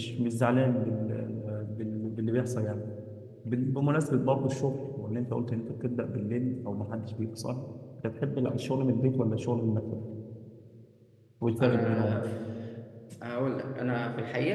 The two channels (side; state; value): both; identical; correlation 1.00